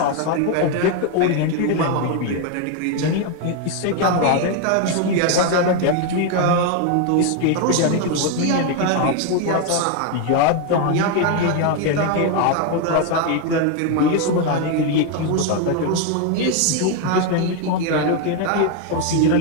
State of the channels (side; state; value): both; different; correlation 0.01